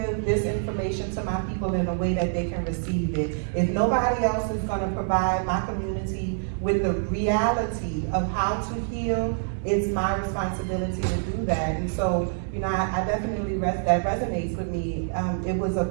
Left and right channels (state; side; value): silent; left; digital silence